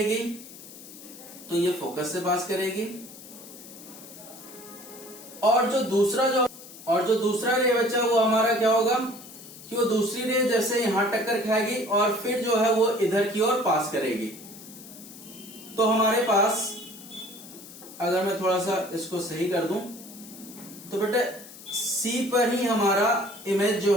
तो ये फोकस से पास करेगी, और जो दूसरा रे बच्चा वो हमारा क्या होगा कि वो दूसरी रे जैसे यहां टक्कर खाएगी और फिर जो है वो इधर की ओर पास करेगी। तो हमारे पास, अगर मैं थोड़ा सा इसको सही कर दूं तो बेटा सी पर ही हमारा इमेज जो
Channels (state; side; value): noise; left; hiss, 17 dB below the sound